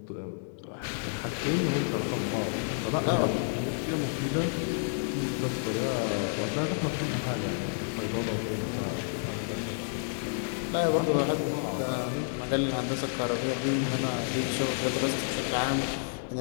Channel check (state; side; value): silent; right; digital silence